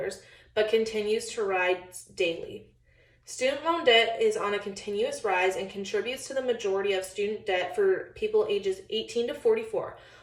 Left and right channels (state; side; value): identical; both; correlation 1.00